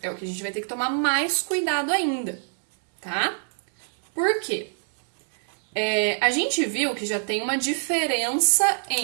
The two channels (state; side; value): silent; left; 62 dB below the other